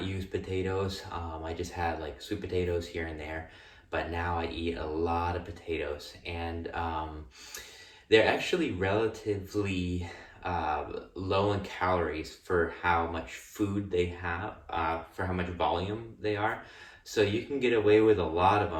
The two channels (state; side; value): identical; both; correlation 1.00